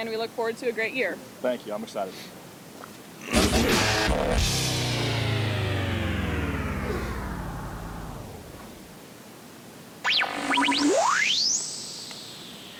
we look forward to a great year. Thank you. I'm excited.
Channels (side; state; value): both; identical; correlation 1.00